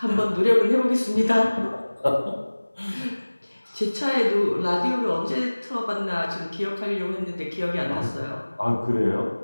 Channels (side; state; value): both; inverted; correlation -1.00